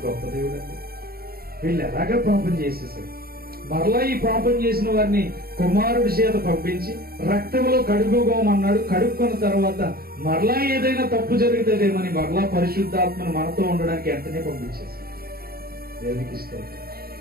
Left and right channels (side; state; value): left; late; 0.44 ms